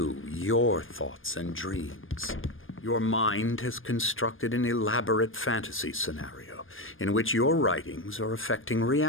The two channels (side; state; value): right; late; 0.59 ms